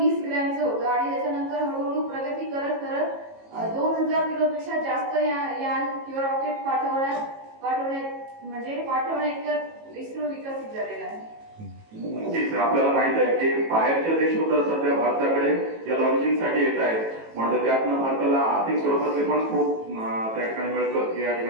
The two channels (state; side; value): late; left; 18 ms